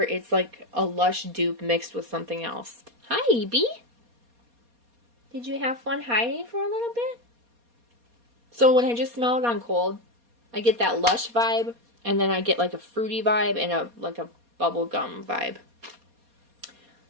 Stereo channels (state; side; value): late; left; 4.2 ms